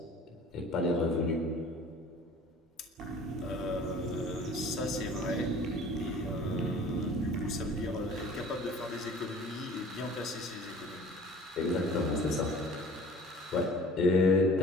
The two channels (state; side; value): normal; both; correlation 0.47